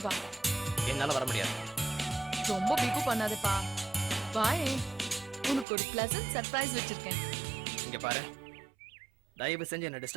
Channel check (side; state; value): left; drops out; at 5.7 s